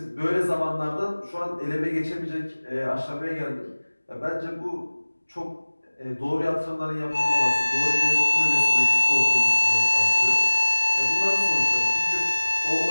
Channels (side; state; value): both; inverted; correlation -1.00